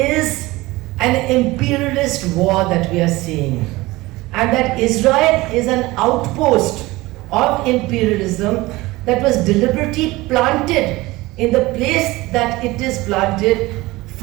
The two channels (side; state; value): left; quieter; 20.2 dB